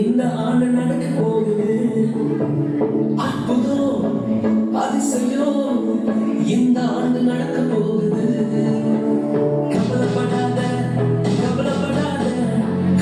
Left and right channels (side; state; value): both; identical; correlation 1.00